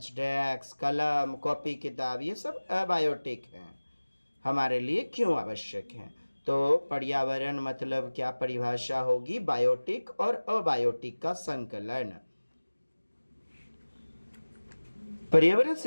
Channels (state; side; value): inverted; both; correlation -1.00